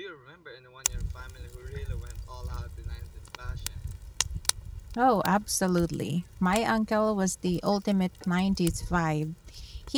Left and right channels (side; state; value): both; identical; correlation 1.00